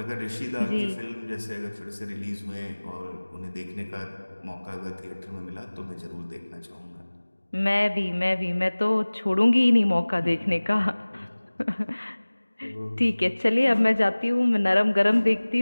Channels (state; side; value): inverted; both; correlation -1.00